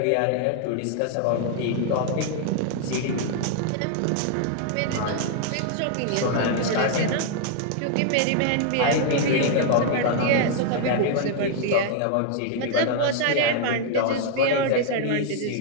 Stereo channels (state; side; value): different; both; correlation 0.00